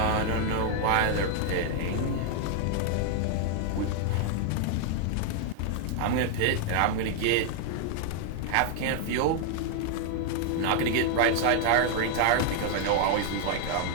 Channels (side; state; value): both; different; correlation 0.00